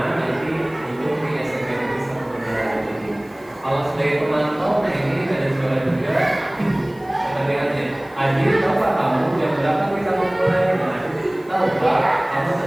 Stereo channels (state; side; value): noise; left; hiss, 28 dB below the sound